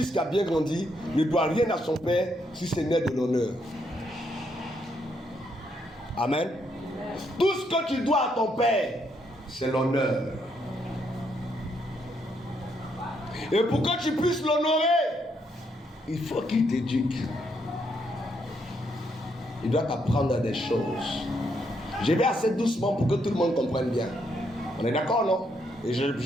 qui a bien grandi ne doit rien à son père si ce n'est de l'honneur. Amen. Tout ce que tu dois à ton père, c'est l'honneur. Et pour que tu puisses l'honorer, il faut qu'il t'éduque. Il doit t'apprendre des choses. Je vais assez doucement pour que tout le monde comprenne bien. On est d'accord, non? Et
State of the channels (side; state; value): both; normal; correlation 0.75